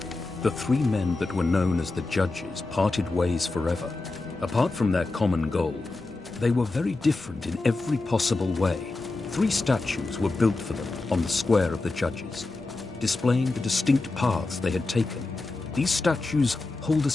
the three men that were known as the Judges parted ways forever. Apart from their common goal, they were very different in every possible way. 3 statues were built for them on the square of the Judges, displaying the distinct paths they had taken. These statues hold a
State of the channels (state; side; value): quieter; right; 3.3 dB